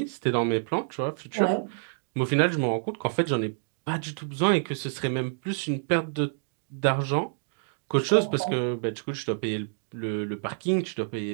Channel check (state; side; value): silent; left; digital silence